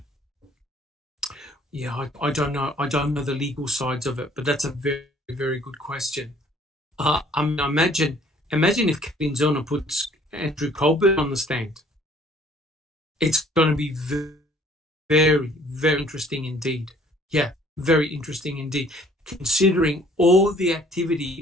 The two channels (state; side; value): normal; both; correlation 0.57